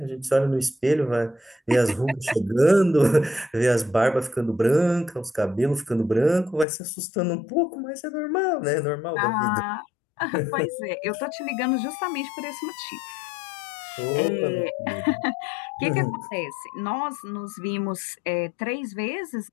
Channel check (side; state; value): right; drops out; at 6.7 s